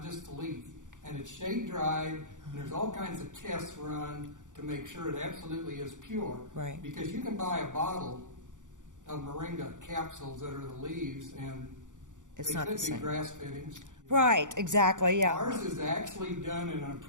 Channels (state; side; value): late; left; 0.86 ms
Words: just the leaf. And it's shade dried, and there's all kinds of tests run to to make sure it absolutely is pure. Right. Because you can buy a bottle of moringa capsules that are the leaves, and It's they not could the be same. grass fittings. Right, exactly, yeah. Ours is actually done in an